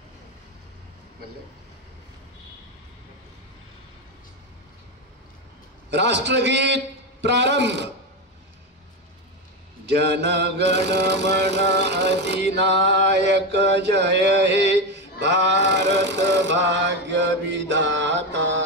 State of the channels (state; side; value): normal; both; correlation 0.14